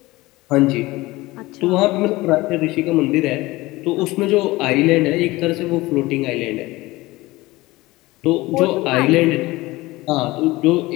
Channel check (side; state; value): right; quieter; 20.0 dB